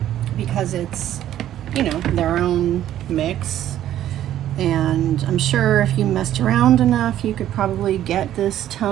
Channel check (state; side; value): quieter; left; 12.0 dB